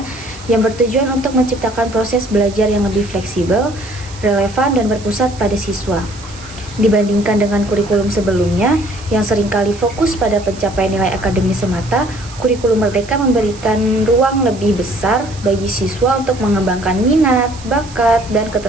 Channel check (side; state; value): right; noise; hiss, 19 dB below the sound